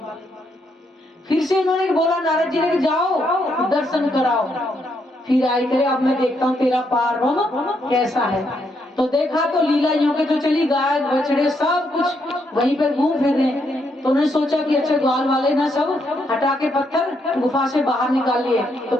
फिर से इन्होंने बोला नारद जी ने कि जाओ दर्शन कराओ। फिर आई करे, अब मैं देखता हूँ तेरा पार ब्रह्म कैसा है। तो देखा तो लीला यूं के जो चली, गाय बछड़े सब कुछ वहीं पर घूम फिर रहे हैं। तो उन्होंने सोचा कि अच्छा ग्वाल वाले ना सब हटा के पत्थर गुफा से बाहर निकाल लिए। तो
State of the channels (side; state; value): both; normal; correlation 0.77